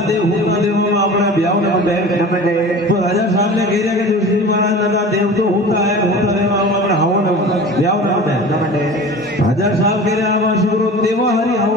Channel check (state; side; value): normal; both; correlation 0.37